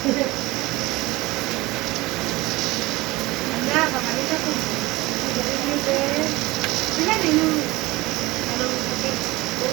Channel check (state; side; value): quieter; left; 20.6 dB